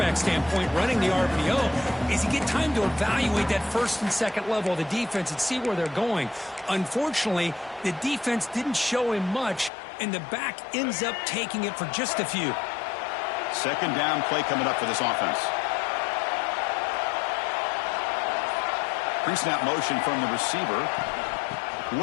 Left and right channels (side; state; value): right; drops out; at 9.7 s